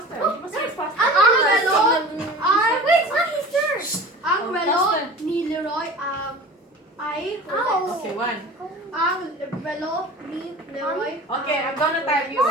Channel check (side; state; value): both; normal; correlation 0.39